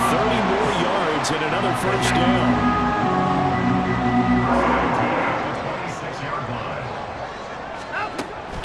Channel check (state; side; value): identical; both; correlation 1.00